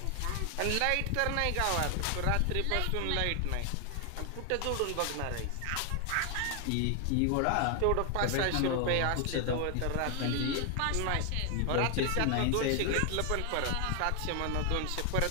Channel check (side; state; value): both; different; correlation 0.00